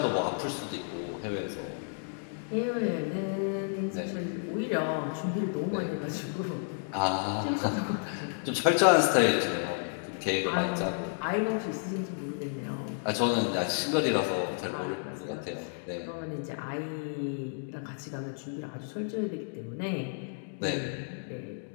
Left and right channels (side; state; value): right; silent; digital silence